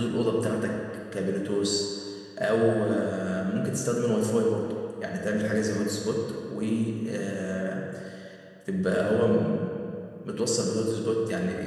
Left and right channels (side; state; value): both; identical; correlation 1.00